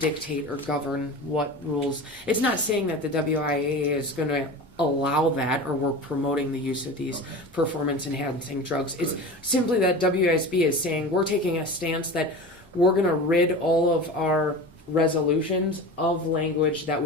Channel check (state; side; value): normal; both; correlation 0.32